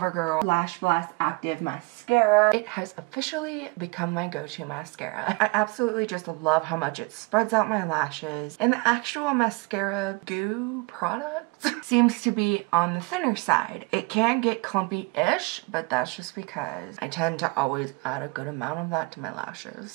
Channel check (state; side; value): quieter; left; 27.3 dB